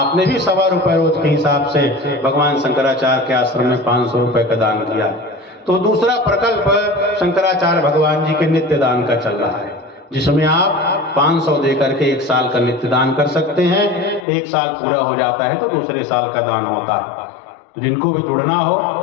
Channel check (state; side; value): drops out; right; at 14.2 s